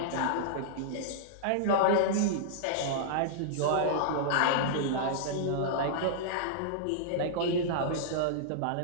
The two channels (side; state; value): both; different; correlation -0.02